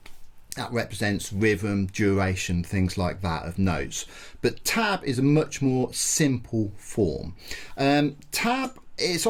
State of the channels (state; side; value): identical; both; correlation 1.00